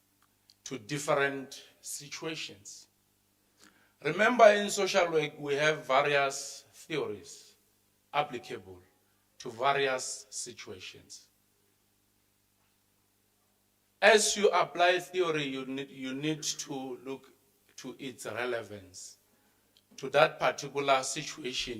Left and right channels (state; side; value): identical; both; correlation 1.00